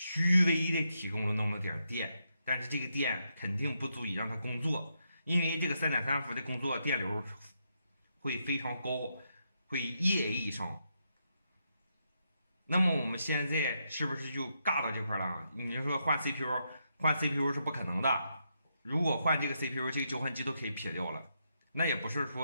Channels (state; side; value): inverted; both; correlation -0.81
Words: 微的提供了那么点电，但是这个电肯定不足以让它工作，因为这个3.3伏的工作电流会非常高，会夜以上。那么我们现在是不是就尬到这块了？你说换 CPU 是不可能的。如果换这个 CPU， 这个交换机都可以撇掉了。那也不是